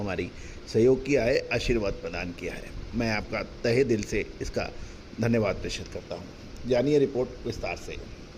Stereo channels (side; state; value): both; identical; correlation 1.00